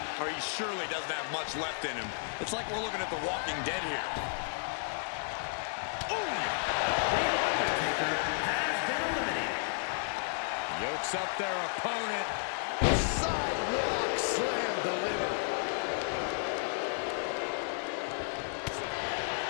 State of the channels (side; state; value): right; silent; digital silence